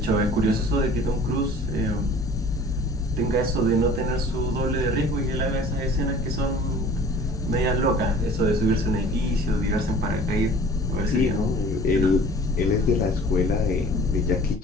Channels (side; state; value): both; normal; correlation 0.48